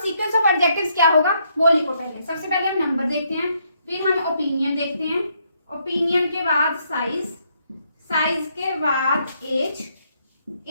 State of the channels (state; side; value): inverted; both; correlation -0.73